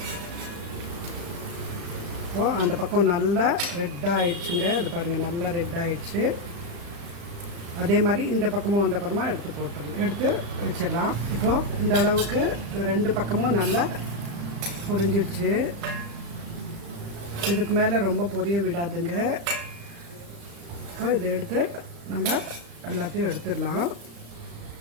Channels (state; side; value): late; left; 35 ms